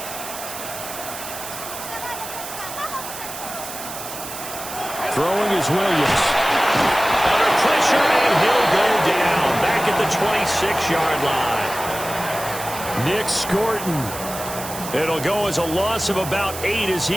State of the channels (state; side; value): noise; right; hiss, 10 dB below the sound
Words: Throwing is Williams. Under pressure, and he'll go down. Back at the 26-yard line. Nick Scorton. It'll go as a loss of about 8 as